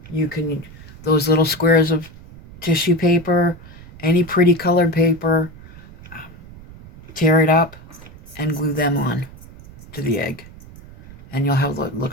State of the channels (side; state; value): right; noise; rumble, 19 dB below the sound